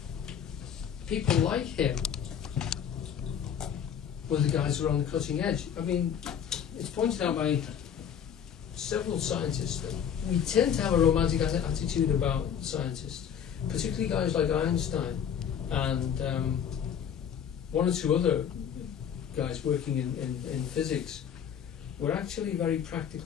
people like him were the guys who were on the cutting edge. I mean, it's pointed out by several scientists that we tend to have a romantic attitude about scientists, particularly guys like Einstein and one or two other guys working in physics were actually very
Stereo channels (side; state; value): right; quieter; 8.4 dB